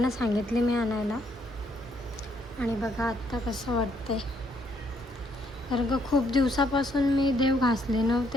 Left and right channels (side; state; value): both; normal; correlation 0.71